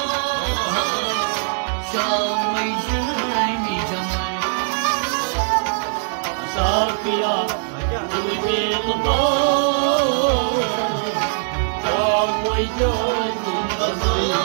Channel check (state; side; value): silent; left; digital silence